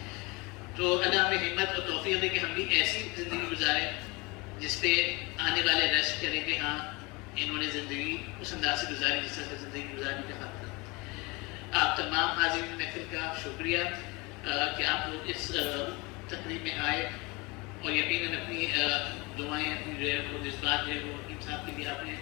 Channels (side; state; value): right; quieter; 25.7 dB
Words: تو اللہ ہمیں ہمت اور توفیق دے کہ ہم بھی ایسی زندگی گزاریں جس پہ آنے والے ریسٹ کریں کہ ہاں انہوں نے زندگی اس انداز سے گزاری جس طرح سے زندگی گزارنے کا حق تھا. آپ تمام حاضرین محفل کا شکریہ کہ آپ لوگ اس تقریب میں آئے اور یقیناً اپنی دعائیں، اپنی جو ہے وہ جذبات جو ہے وہ حکیم صاحب کے لیے آپ نے